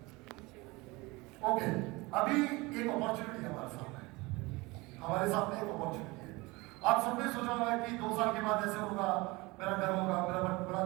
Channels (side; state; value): left; quieter; 23.4 dB